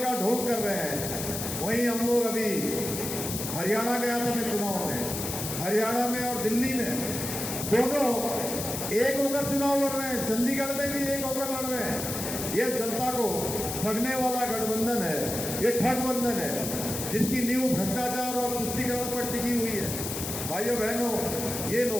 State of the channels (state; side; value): noise; left; hiss, 5 dB below the sound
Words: ढोंग कर रहे हैं। वहीं हम लोग अभी हरियाणा गया था मैं चुनाव में, हरियाणा में और दिल्ली में दोनों एक होकर चुनाव लड़ रहे हैं, चंडीगढ़ में भी एक होकर लड़ रहे हैं। ये जनता को ठगने वाला गठबंधन है, ये ठगबंधन है जिसकी नींव भ्रष्टाचार और तुष्टीकरण पर टिकी हुई है। भाइयों बहनों, ये